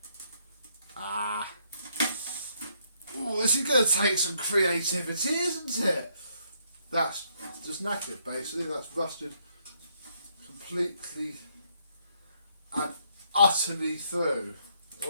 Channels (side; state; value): both; inverted; correlation -0.72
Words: Oh, this is going to take some creativity, isn't it? That's just knackered, basically. That's rusted completely and utterly through.